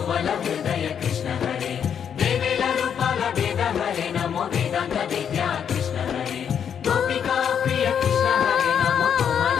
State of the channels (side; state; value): right; quieter; 8.1 dB